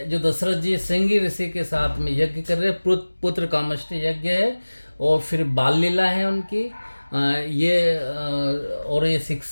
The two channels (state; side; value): inverted; both; correlation -1.00